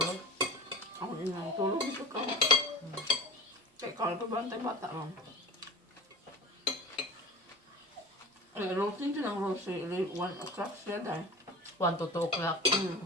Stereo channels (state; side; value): normal; both; correlation 0.34